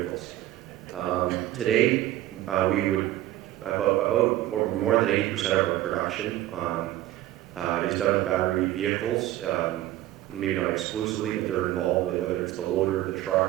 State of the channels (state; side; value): quieter; left; 14.7 dB